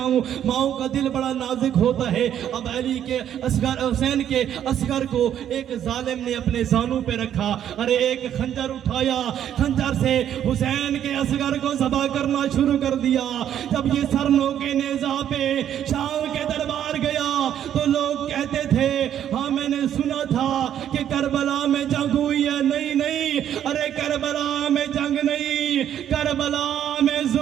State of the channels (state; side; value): quieter; left; 10.2 dB